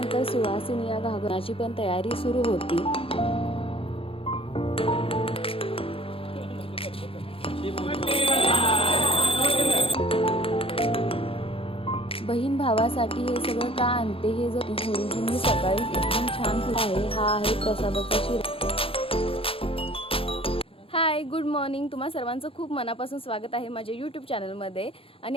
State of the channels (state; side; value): late; right; 0.27 ms